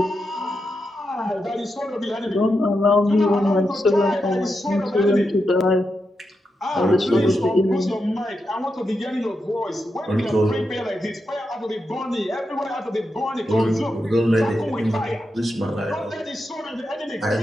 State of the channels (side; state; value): both; normal; correlation 0.86